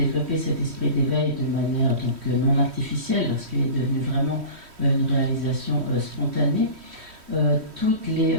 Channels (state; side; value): late; left; 3.1 ms